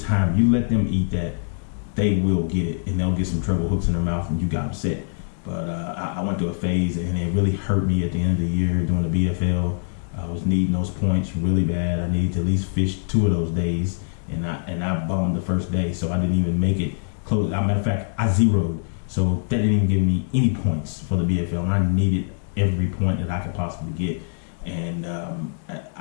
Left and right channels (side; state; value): right; silent; digital silence